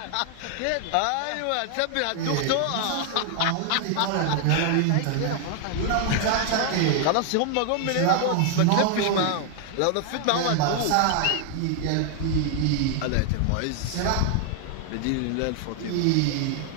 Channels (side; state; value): both; different; correlation 0.00